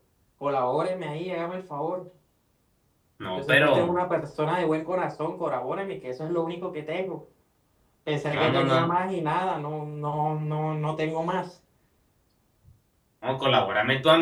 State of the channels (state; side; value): identical; both; correlation 1.00